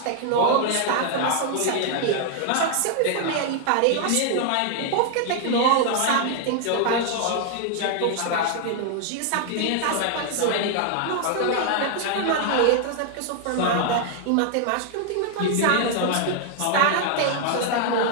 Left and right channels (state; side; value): different; both; correlation 0.00